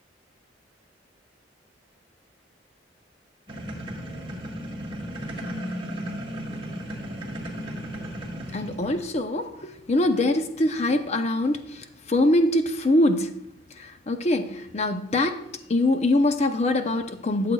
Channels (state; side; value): normal; both; correlation 0.63